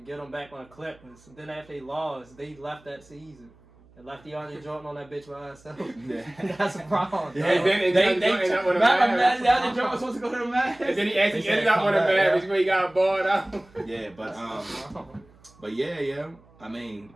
him back on the Clippers. And then after they lost, they left that season. And left DeAndre Jordan on that bitch by herself. Yeah. That's a problem. Yeah, And then they ended up with the Mavs. DeAndre Jordan was supposed to go to the Mavs. And then he actually They said, ended up "Come with a back, Mavs yeah." where he got balled out. Yeah, but yeah. I mean,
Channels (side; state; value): right; noise; hum, 27 dB below the sound